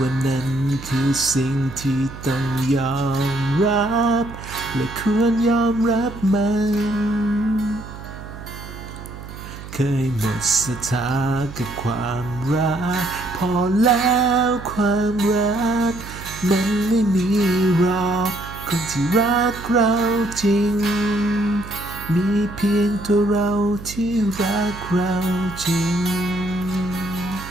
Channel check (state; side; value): noise; right; hum, 13 dB below the sound